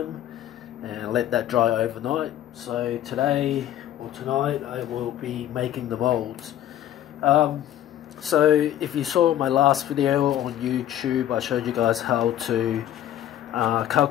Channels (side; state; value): right; quieter; 11.8 dB